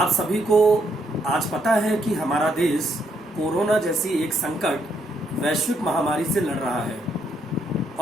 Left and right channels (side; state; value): both; normal; correlation 0.74